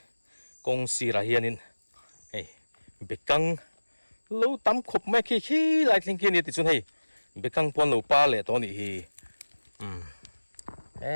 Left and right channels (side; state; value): both; inverted; correlation -1.00